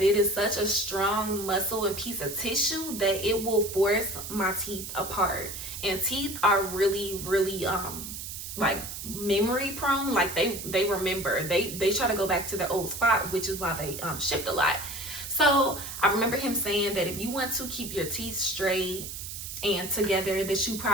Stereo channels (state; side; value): noise; right; hiss, 8 dB below the sound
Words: it is such a strong muscle and piece of tissue that it will force my teeth apart. And teeth are really, really like memory prone. Like they remember, they try to go back to their old spot, which is why they shift a lot. So I remember him saying that if you want to keep your teeth straight and together, that you